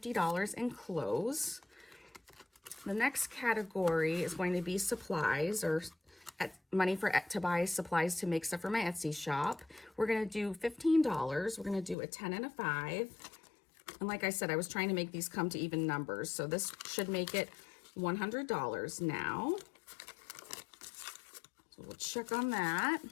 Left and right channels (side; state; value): right; drops out; at 12.0 s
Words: in clothes. The next category is going to be supplies, or money to buy supplies to make stuff for my Etsy shop. We're going to do $15. We're going to do a 10 and a 5. And like I said, I was trying to make these come to even numbers, so this should make it $100 now. So we'll check on that.